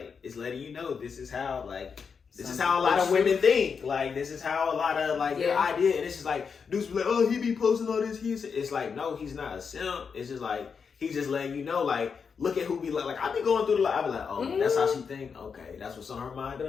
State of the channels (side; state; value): right; quieter; 6.0 dB